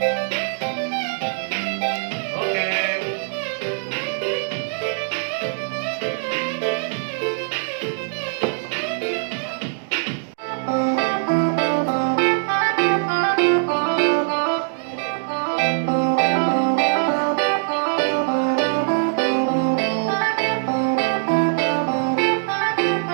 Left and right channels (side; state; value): left; silent; digital silence